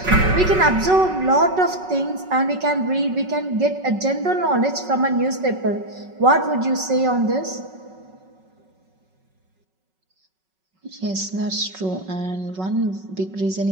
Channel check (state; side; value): late; left; 5.4 ms